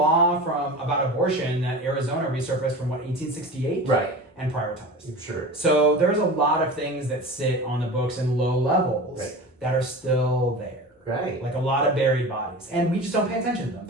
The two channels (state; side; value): normal; both; correlation 0.33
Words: about abortion that Arizona resurfaced from 1868, Right, and prioritized. sure. So there's a lot of things that sit on the books in low levels that are still there. Right. Like a lot of buried bodies, and we just don't pay attention to them.